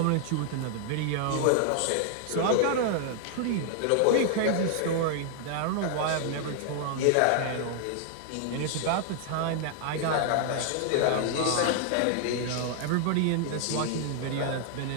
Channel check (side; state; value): both; different; correlation 0.00